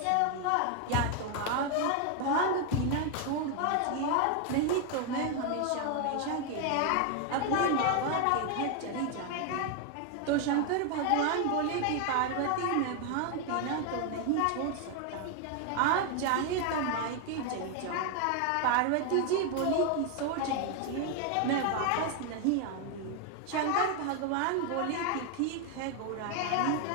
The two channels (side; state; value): both; different; correlation 0.01